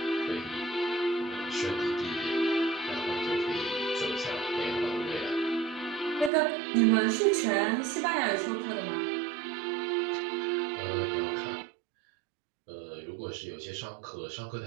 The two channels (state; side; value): drops out; left; at 6.3 s